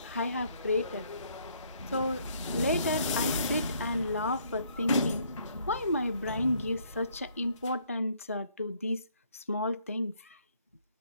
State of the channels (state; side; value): inverted; both; correlation -0.66